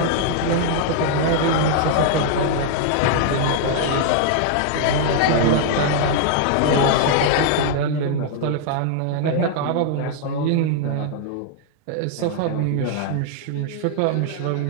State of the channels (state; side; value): different; both; correlation -0.01